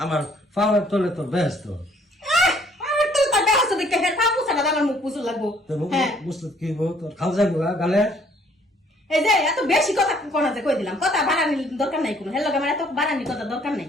আমার পাওয়ার তোলে তো ব্যস্ত মুখ মুছুর লাগবো। বুঝতে কি তোর খাল যাবো গালে। এই যে এত বেশি কথা কোনা যে কই দিলাম, কথা বাড়ানির দরকার নাই কোনো। হেলো আমার এত বাড়ানির কথা দরকার নাই।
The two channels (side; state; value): both; normal; correlation 0.61